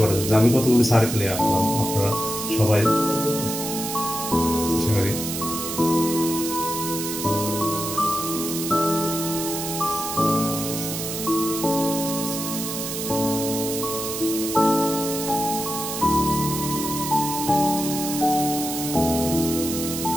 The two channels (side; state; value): right; noise; hiss, 5 dB below the sound